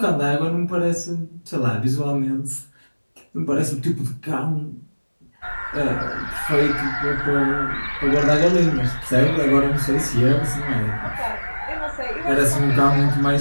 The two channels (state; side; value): inverted; both; correlation -1.00